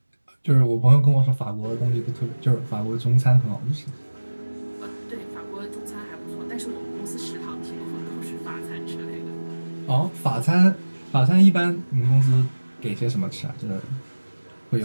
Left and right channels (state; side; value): inverted; both; correlation -1.00